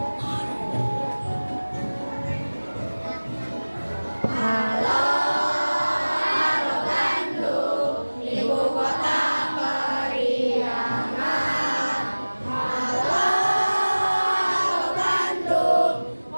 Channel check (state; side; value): inverted; both; correlation -1.00